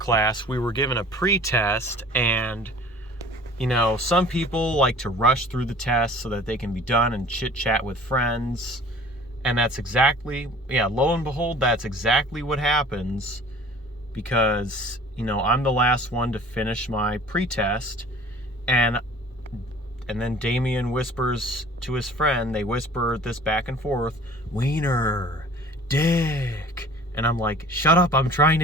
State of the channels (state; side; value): normal; both; correlation 0.48